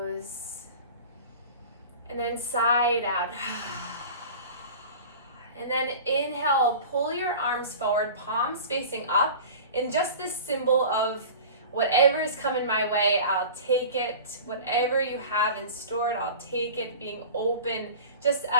and then side out. And then inhale, pull your arms forward, palms facing up, and just this symbol of whatever is coming my way, I'll take it. Whatever you have in store, I'll take it, being open, just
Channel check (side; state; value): both; inverted; correlation -0.37